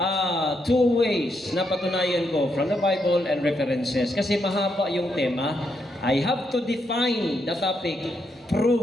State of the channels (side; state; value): both; normal; correlation 0.79